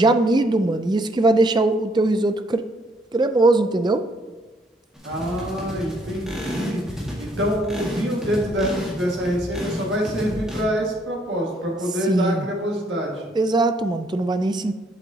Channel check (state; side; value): normal; both; correlation 0.68